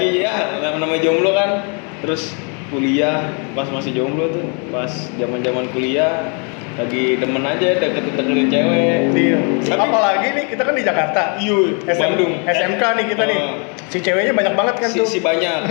ya namanya jomblo kan. Terus kuliah pas masih jomblo tuh, pas zaman-zaman kuliah lagi demen aja deketin cewek. Iya. Tapi- Apalagi nih kita kan di Jakarta. Iya, Bandung. SMK nih kita nih. Si ceweknya banyak banget kan tuh. Si banyak,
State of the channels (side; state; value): right; quieter; 37.2 dB